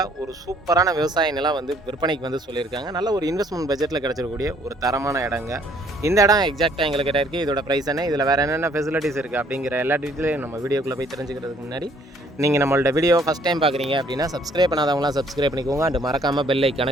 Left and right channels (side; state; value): both; normal; correlation 0.62